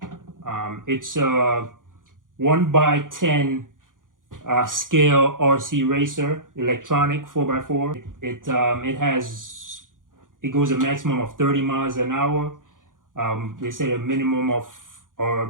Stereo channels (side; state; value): left; late; 0.89 ms